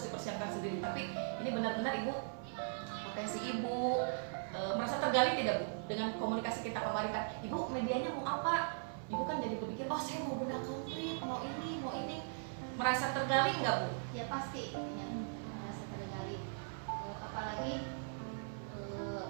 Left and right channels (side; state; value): left; silent; 52 dB below the other